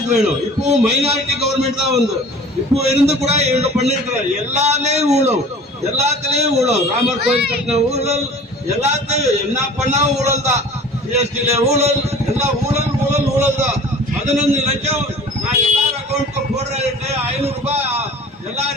வேணும்? இப்பவும் மைனாரிட்டி கவர்மெண்ட் தான் இப்போ இருந்து கூட இவங்க பண்ணிருக்கிற எல்லாத்துலயும் ஊழல். ராமர் கோயில் கட்டின ஊழல், எல்லாத்தையும் என்ன பண்ணா ஊழல் தான். ஜிஎஸ்டில ஊழல், எல்லாம் ஊழல் தான். 15 லட்சம் நான் எல்லாரும் அக்கௌண்ட்க்கு போடுறேன், 500 ரூபாய்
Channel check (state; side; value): normal; both; correlation 0.43